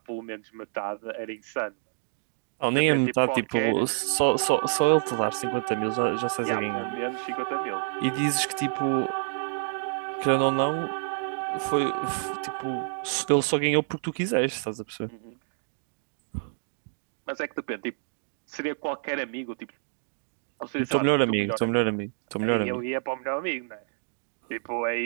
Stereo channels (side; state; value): left; silent; digital silence